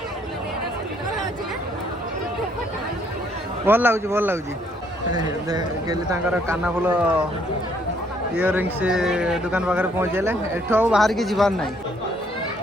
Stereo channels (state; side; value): normal; both; correlation 0.67